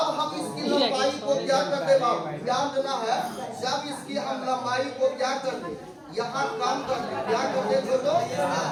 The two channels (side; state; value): both; identical; correlation 1.00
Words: हम इसकी लंबाई को क्या करते बाबू, ध्यान देना है, जब इसकी हम लंबाई को क्या करते, यहाँ कम करते, क्या करते बोलो,